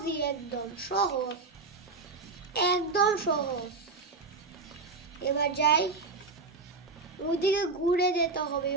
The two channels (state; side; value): quieter; left; 4.0 dB